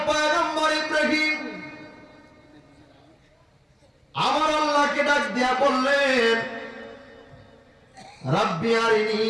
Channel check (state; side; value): identical; both; correlation 1.00